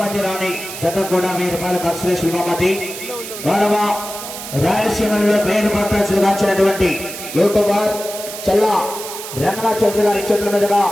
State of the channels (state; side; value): noise; right; hiss, 10 dB below the sound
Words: రాణి జత కూడా 1000 రూపాయల కన్సలేషన్ బహుమతి. గౌరవ రాయలసీమలో పేరు పట్టాల్సినటువంటి యూట్యూబర్ చల్లా రంగనాథ్ చౌదరి గారి చేతుల మీదుగా